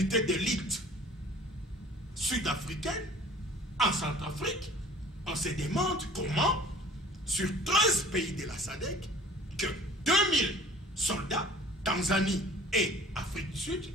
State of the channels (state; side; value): normal; both; correlation 0.48